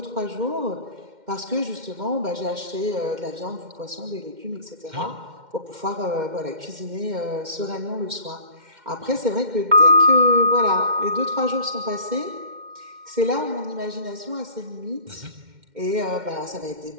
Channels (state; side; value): late; left; 2.1 ms